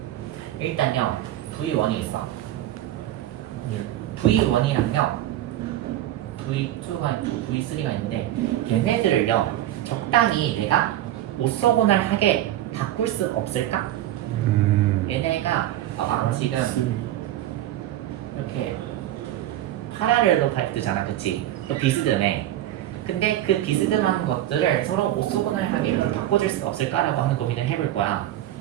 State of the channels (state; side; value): quieter; left; 13.3 dB